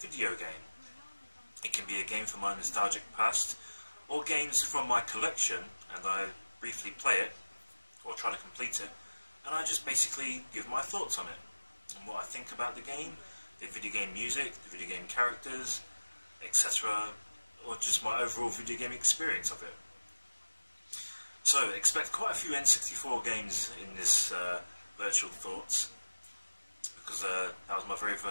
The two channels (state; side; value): inverted; both; correlation -1.00